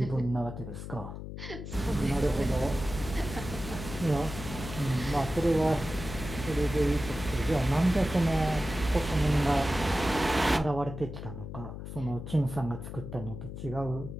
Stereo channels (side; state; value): left; noise; hum, 9 dB below the sound